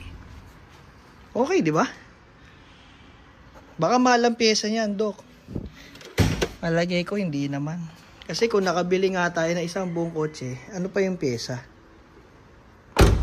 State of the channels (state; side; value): identical; both; correlation 1.00